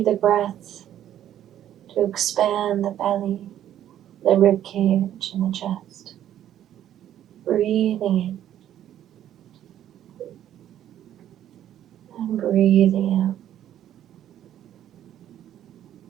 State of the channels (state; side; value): quieter; left; 11.3 dB